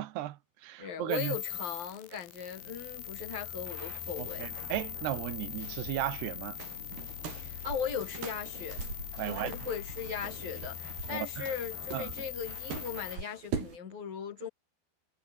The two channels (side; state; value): left; late; 12 ms